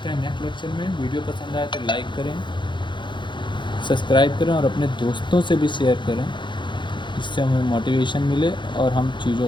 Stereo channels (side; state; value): right; late; 0.23 ms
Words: हैं नेक्स्ट लेक्चर में। वीडियो पसंद आए तो लाइक करें, सब्सक्राइब करें और अपने दोस्तों से भी शेयर करें, जिससे हमें मोटिवेशन मिले और हम